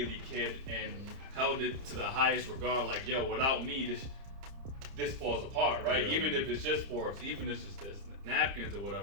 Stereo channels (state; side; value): late; left; 30 ms